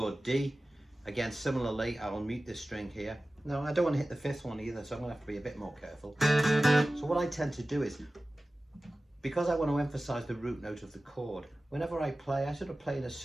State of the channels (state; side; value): normal; both; correlation 0.96